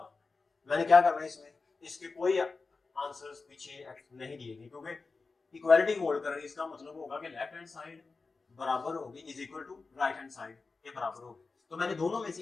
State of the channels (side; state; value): right; quieter; 4.1 dB